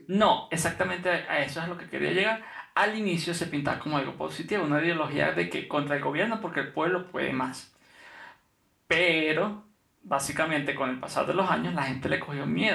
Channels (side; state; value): both; identical; correlation 1.00